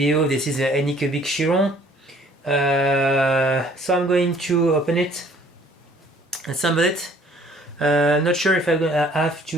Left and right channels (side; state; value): both; normal; correlation 0.57